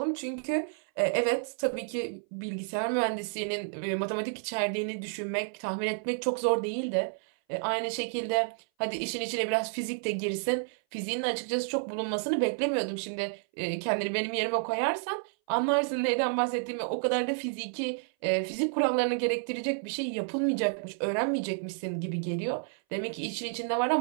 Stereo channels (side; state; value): left; silent; 58 dB below the other